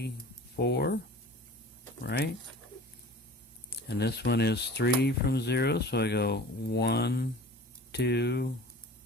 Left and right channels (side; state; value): both; normal; correlation 0.41